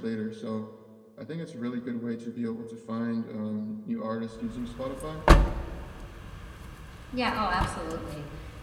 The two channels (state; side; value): identical; both; correlation 1.00